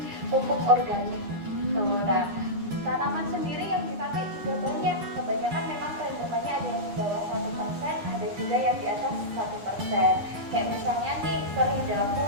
pupuk organik. Tuh, nah, tanaman sendiri yang dipakai juga banyak. Kebanyakan memang peredarannya ada yang di bawah 1%, ada juga yang di atas 1%. Kayak misalnya nih,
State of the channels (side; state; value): left; late; 9.8 ms